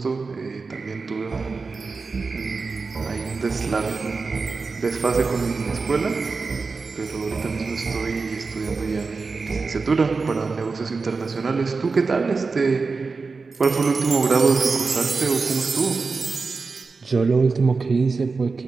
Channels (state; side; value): quieter; left; 4.4 dB